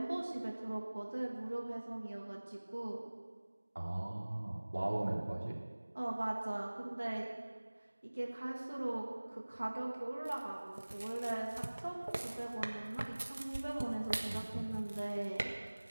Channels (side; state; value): both; inverted; correlation -1.00